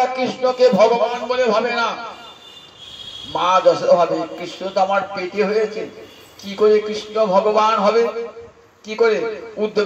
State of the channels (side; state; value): both; identical; correlation 1.00